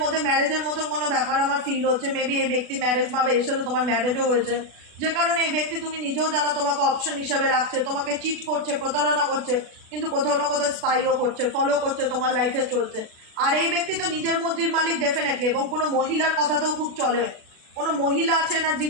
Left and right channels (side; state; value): left; late; 36 ms